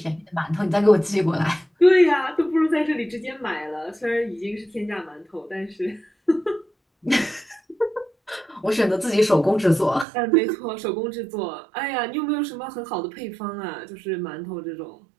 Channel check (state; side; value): drops out; left; at 10.1 s